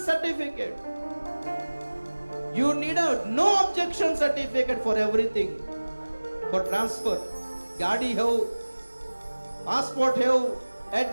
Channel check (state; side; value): inverted; both; correlation -1.00